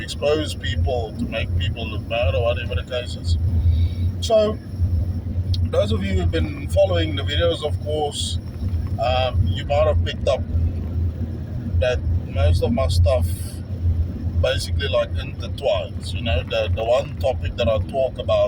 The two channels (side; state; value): both; identical; correlation 1.00